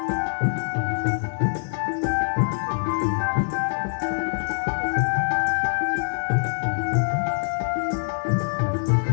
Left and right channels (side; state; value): right; silent; 59 dB below the other